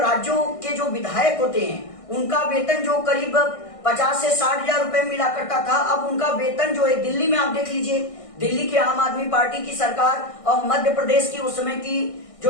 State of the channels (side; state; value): right; late; 1.6 ms